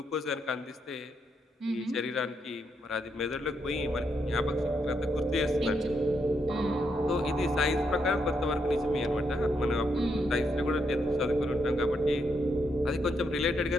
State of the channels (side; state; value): both; normal; correlation 0.79